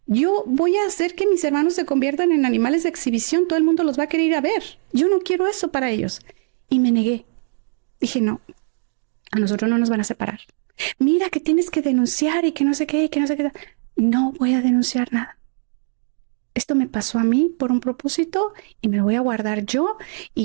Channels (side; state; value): left; silent; 65 dB below the other